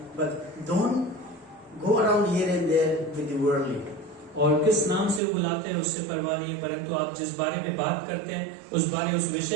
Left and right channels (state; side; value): drops out; left; at 5.2 s